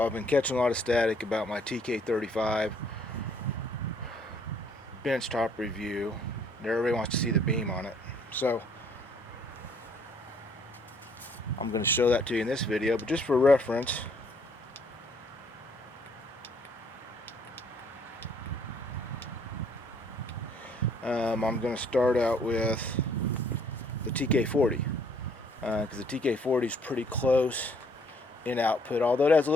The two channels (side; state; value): both; normal; correlation 0.63